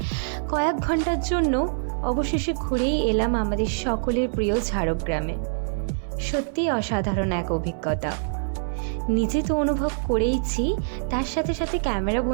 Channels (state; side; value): silent; left; 62 dB below the other